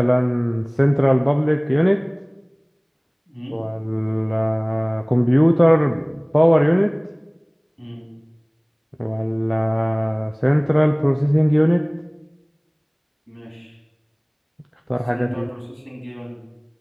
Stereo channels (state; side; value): identical; both; correlation 1.00